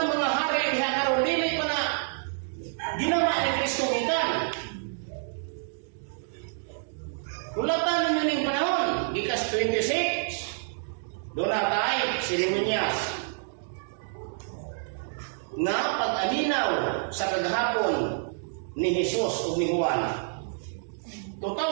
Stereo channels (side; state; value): left; silent; digital silence